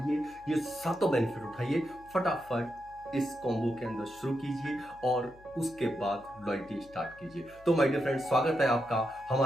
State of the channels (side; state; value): left; noise; hum, 25 dB below the sound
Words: ये 7 बेनिफिट उठाइए, फटाफट इस कॉम्बो के अंदर शुरू कीजिए और उसके बाद लॉयल्टी स्टार्ट कीजिए। तो माय डियर फ्रेंड्स, स्वागत है आपका